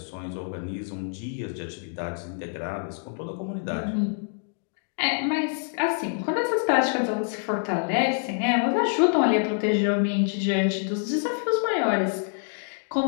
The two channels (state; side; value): silent; right; 60 dB below the other